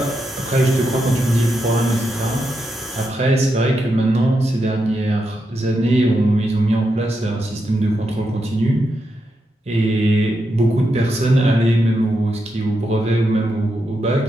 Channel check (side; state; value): both; normal; correlation 0.84